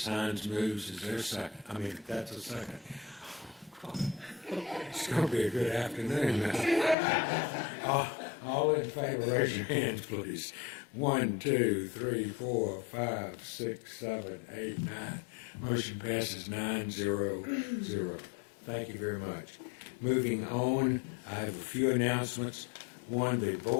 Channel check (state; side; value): drops out; right; at 7.0 s